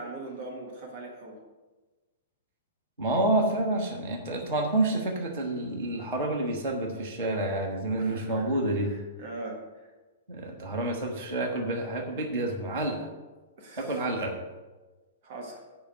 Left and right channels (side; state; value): both; inverted; correlation -0.32